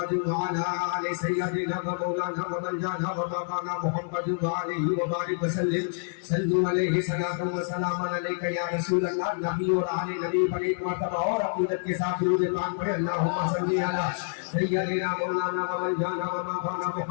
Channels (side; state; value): right; silent; 60 dB below the other